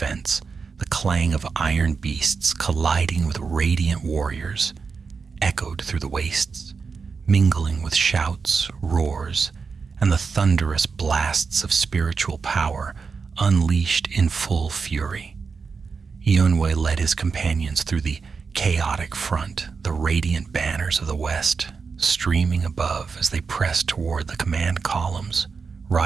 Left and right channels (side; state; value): left; quieter; 5.2 dB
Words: The clang of iron beasts colliding with radiant warriors echoed through the wastes, mingling with shouts, roars, and the thunderous blasts of spiritual power unleashed in full fury. Eonwe led his companions through the chaotic front, the radiant banners of the west streaming above as they pressed toward the command columns,